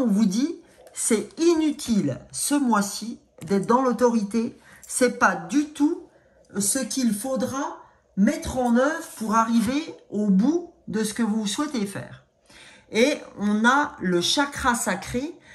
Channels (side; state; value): both; identical; correlation 1.00